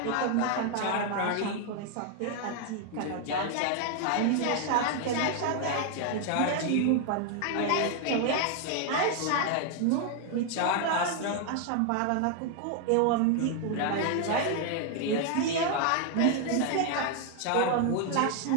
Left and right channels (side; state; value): both; different; correlation 0.00